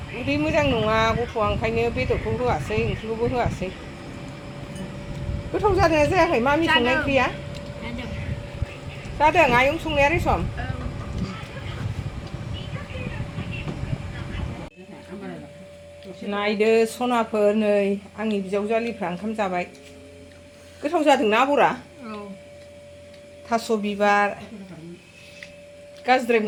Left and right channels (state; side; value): identical; both; correlation 1.00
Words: उदै मोजां नङा गथ'आ ओंखायनो बेदरखौ होआसै ओंख्रिखौबो होआसै गोथाव जादोंना जायाखै मामि संनाय ओंख्रिया जादों आयं संनाया रेसम नायदो सनाफोर नै आंनि बिजावजालिफ्रा ओंखाम जाबाय गोथाव जादोंना आबरा थास' बिबार गाज्रिद्राय